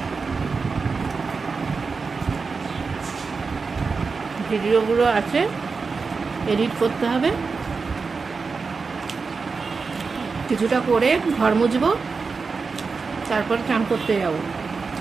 ভিডিওগুলো আছে, এডিট করতে হবে। কিছুটা করে ঘর মুছবো, তারপর চান করতে যাব।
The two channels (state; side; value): quieter; left; 4.7 dB